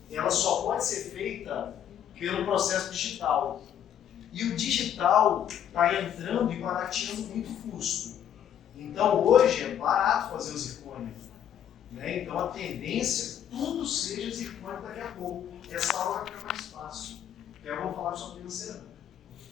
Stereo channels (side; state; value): right; quieter; 9.8 dB